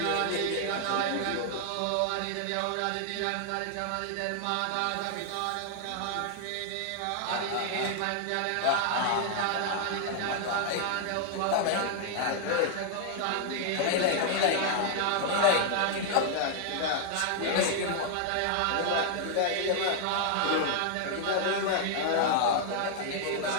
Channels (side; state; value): both; different; correlation 0.00